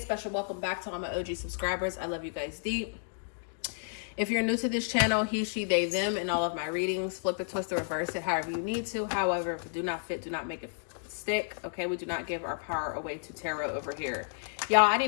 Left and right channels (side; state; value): right; silent; digital silence